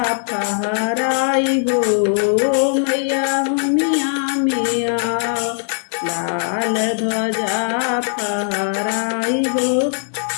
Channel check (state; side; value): silent; right; digital silence